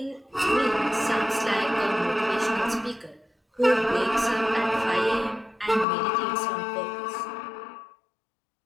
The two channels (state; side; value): drops out; right; at 5.9 s